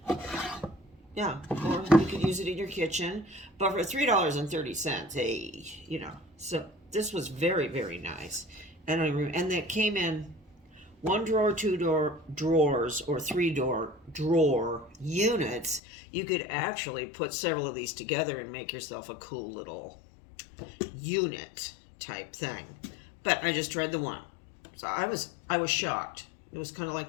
Yeah, or you could use it in your kitchen. But for $3.30, hey, So this was very, very nice. And it came in 1 drawer, 2 drawers, or 3 drawer units. You could actually put several of these together and make yourself a cool little unit type thing. But I just tried the one. So I was shocked. It was kind of like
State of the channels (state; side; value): drops out; right; at 15.8 s